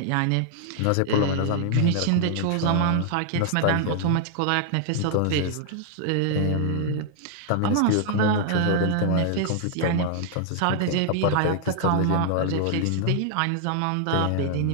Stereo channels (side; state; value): both; different; correlation 0.00